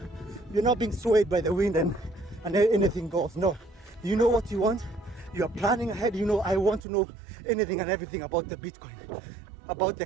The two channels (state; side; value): drops out; left; at 6.8 s